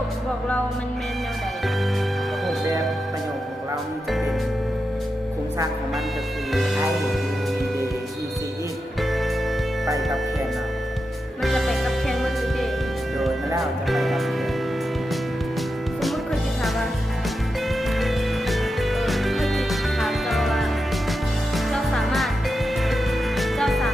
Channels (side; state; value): both; normal; correlation 0.89